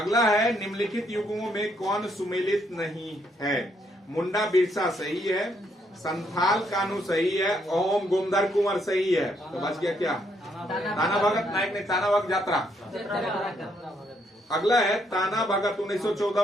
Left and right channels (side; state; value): both; normal; correlation 0.73